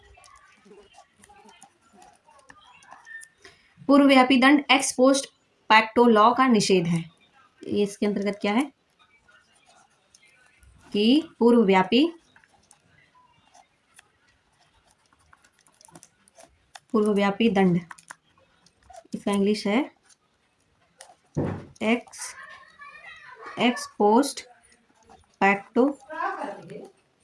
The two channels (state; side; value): identical; both; correlation 1.00